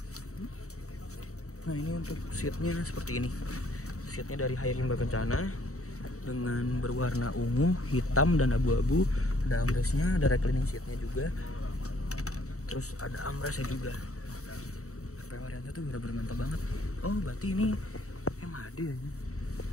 Nah ini untuk seatnya seperti ini. Seatnya dari Hayarimba Kencana dengan berwarna ungu, hitam, dan abu-abu. Ada armrestnya, ada reclining seatnya juga. Terus ada armrestnya juga. PO Arianto tuh bener-bener mantap banget. Oh berarti ini MHD ya?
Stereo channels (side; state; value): right; late; 0.65 ms